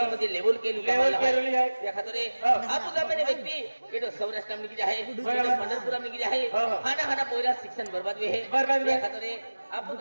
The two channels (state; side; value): inverted; both; correlation -1.00